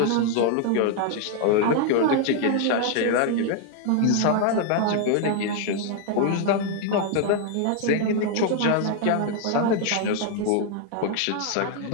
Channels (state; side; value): different; both; correlation 0.00